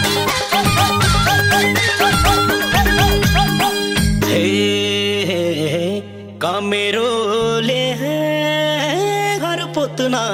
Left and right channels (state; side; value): identical; both; correlation 1.00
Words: कमेरोले घर पोत्न